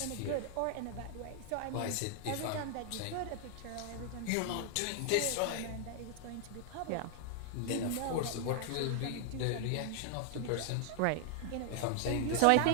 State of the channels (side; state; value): both; different; correlation 0.00